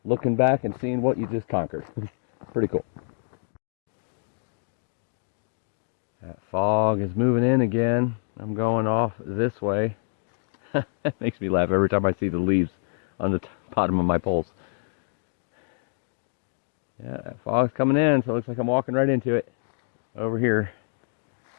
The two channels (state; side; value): silent; right; digital silence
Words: looking back and seeing what you just conquered. Pretty cool. That fog is moving in again. I'm going off this way. It makes me laugh every time I see the leaves on the bottom of my poles. Yeah, that fog's coming in, so it looks like I'm walking right into it over here.